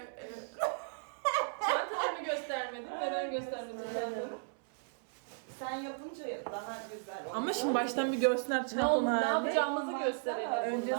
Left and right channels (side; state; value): left; silent; 54 dB below the other